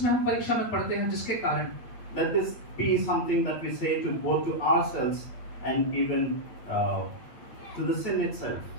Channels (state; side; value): late; right; 8.5 ms